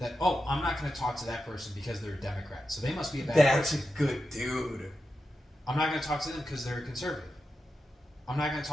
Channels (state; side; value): normal; both; correlation 0.89